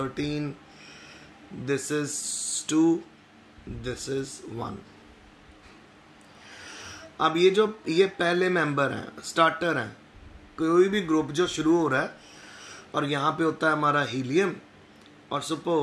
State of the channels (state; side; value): identical; both; correlation 1.00